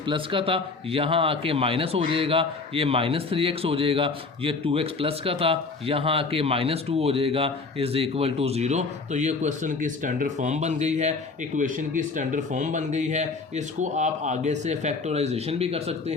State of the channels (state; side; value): quieter; right; 4.1 dB